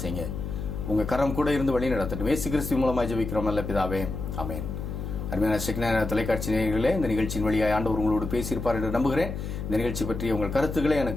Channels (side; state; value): left; noise; hum, 6 dB below the sound